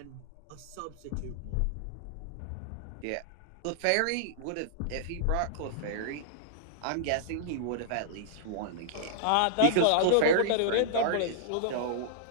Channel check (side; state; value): both; different; correlation -0.02